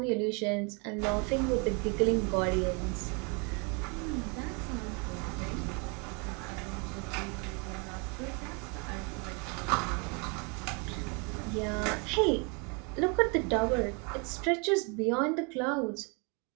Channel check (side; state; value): left; quieter; 32.8 dB